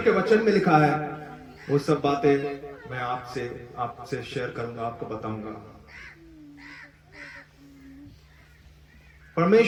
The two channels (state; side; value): identical; both; correlation 1.00